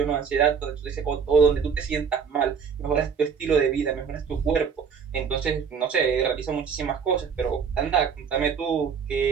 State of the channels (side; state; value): left; quieter; 6.5 dB